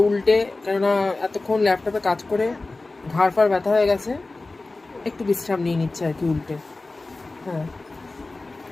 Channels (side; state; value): right; quieter; 3.3 dB